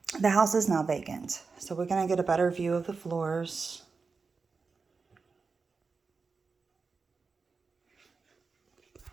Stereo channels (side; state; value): left; quieter; 4.7 dB